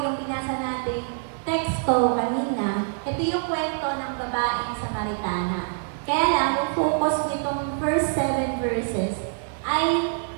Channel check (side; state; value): left; silent; 62 dB below the other